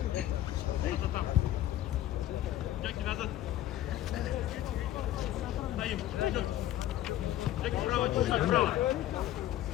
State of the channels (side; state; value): right; quieter; 13.3 dB